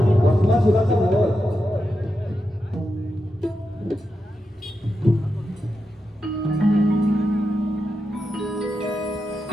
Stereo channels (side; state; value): both; normal; correlation 0.87